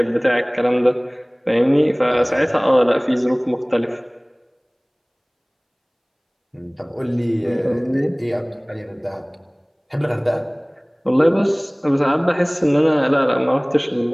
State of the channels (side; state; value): both; identical; correlation 1.00